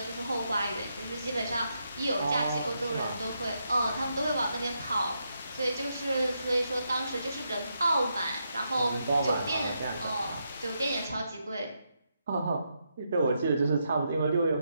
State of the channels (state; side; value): inverted; both; correlation -0.82